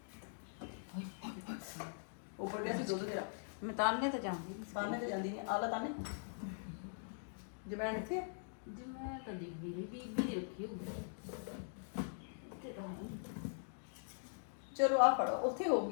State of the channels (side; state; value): right; silent; digital silence